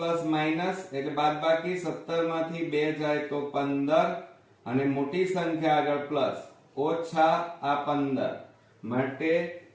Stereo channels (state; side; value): identical; both; correlation 1.00